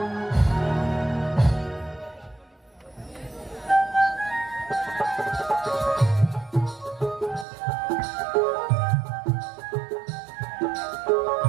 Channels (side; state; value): left; drops out; at 7.5 s